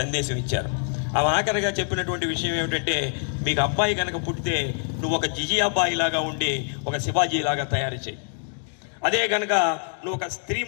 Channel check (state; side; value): silent; right; 61 dB below the other